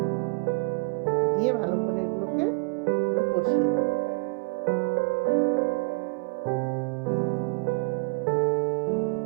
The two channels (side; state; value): left; quieter; 34.6 dB